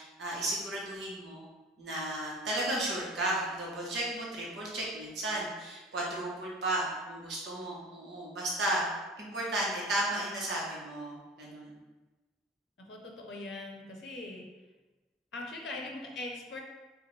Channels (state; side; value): normal; both; correlation 0.35